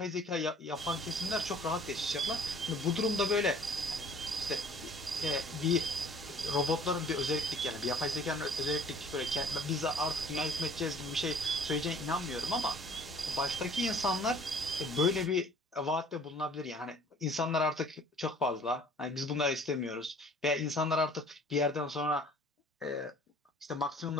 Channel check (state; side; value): normal; both; correlation 0.52